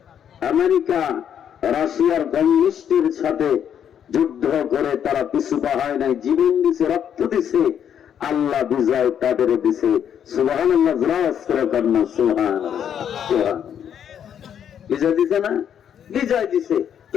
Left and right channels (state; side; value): quieter; right; 8.9 dB